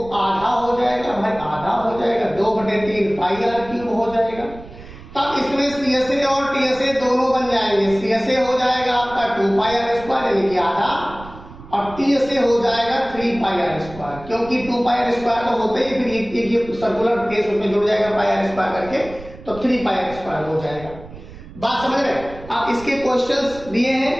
आधा हो जाएगा, भाई आधा हो जाएगा, 2/3 पाई आर क्यूब हो जाएगा। तब इसमें सीएसए और टीएसए दोनों बन जाएंगे। सीएसए हो जाएगा आपका 2 पाई आर स्क्वायर यानी कि आधा, और टीएसए हो जाएगा 3 पाई आर स्क्वायर, क्योंकि 2 पाई आर स्क्वायर तो होते ही, फिर एक सर्कुलर केस उसमें जुड़ जाएगा पाई आर स्क्वायर करके, तो 3 पाई आर स्क्वायर हो जाएगा। बात समझ रहे हैं? आप इसके क्वेश्चंस दिए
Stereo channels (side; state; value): right; noise; rumble, 17 dB below the sound